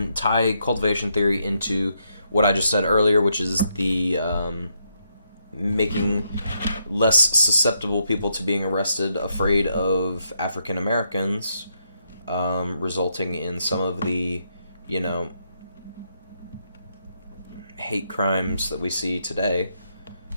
tie cultivation theory into what I just said earlier, which is the making less susceptible people to being arrested, afraid of African Americans, resulting in some of the, hate crimes that we see today.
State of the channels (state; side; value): inverted; both; correlation -0.78